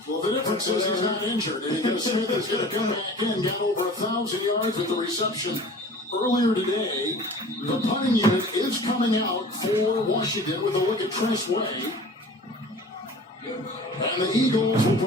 Well, the difference is he's not injured, and because Smith is going to come back in, got over 1,000 yards with the reception earlier today. The punting unit is coming out for Washington with a look at Tress Way. And the Eagles will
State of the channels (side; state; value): both; normal; correlation 0.42